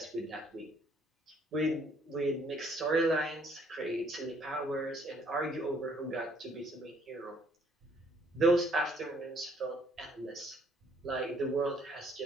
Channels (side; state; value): both; normal; correlation 0.64